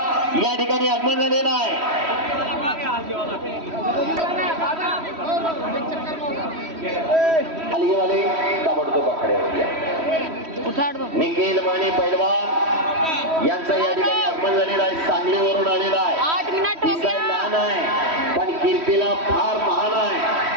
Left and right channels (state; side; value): late; left; 3.1 ms